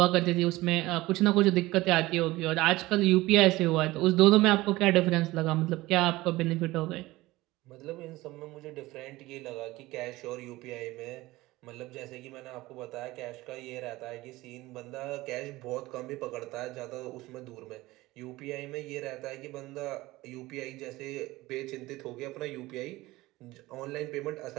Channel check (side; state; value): left; quieter; 19.0 dB